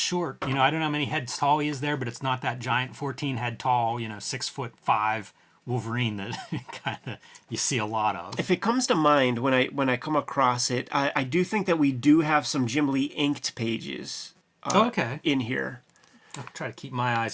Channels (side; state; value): both; identical; correlation 1.00